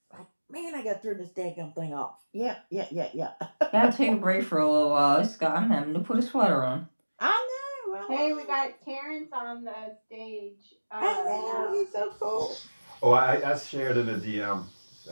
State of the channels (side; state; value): both; inverted; correlation -1.00